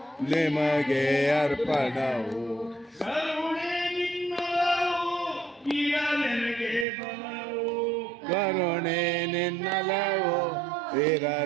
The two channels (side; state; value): left; drops out; at 6.9 s